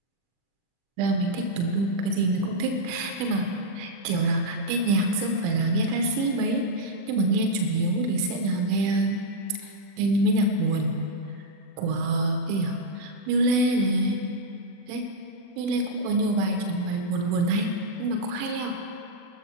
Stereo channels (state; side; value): late; left; 40 ms